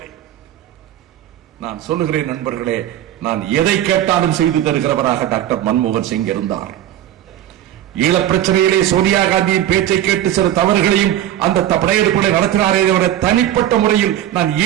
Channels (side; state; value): left; quieter; 11.9 dB